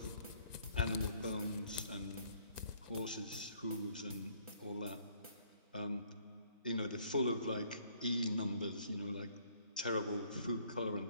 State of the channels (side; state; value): both; inverted; correlation -0.64